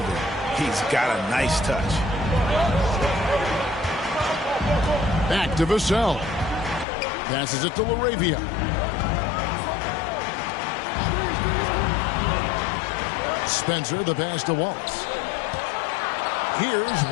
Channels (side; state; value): right; drops out; at 6.9 s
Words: He's got a nice touch. Back to Vassell. Passes it to LaRavia. Spencer, the pass to Wallace. Here's